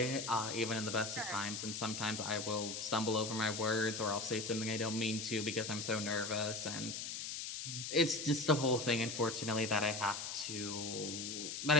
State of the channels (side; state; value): left; noise; hiss, 5 dB below the sound